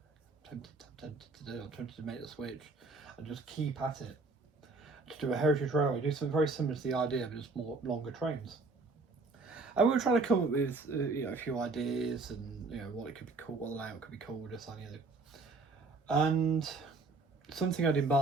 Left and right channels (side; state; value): left; quieter; 3.7 dB